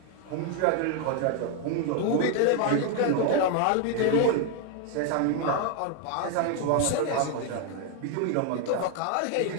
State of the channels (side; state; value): both; different; correlation 0.01